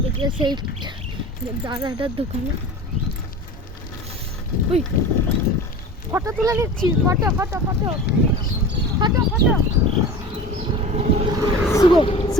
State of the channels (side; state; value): both; normal; correlation 0.35